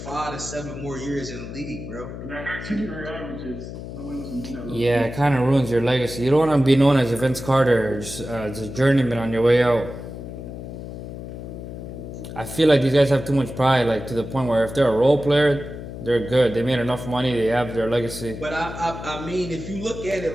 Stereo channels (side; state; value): left; noise; hum, 10 dB below the sound